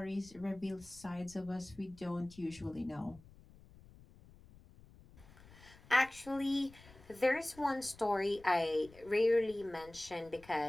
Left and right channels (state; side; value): noise; left; rumble, 22 dB below the sound